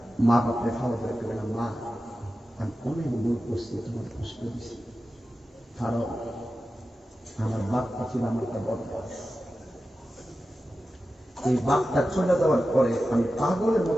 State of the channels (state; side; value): normal; both; correlation 0.93